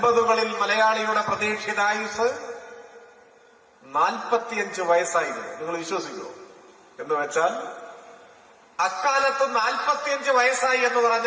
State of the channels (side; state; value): both; identical; correlation 1.00